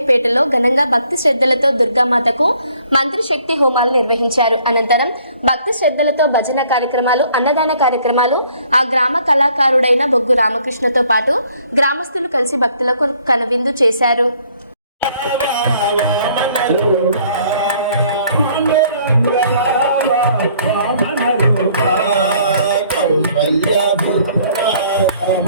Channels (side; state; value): both; inverted; correlation -0.62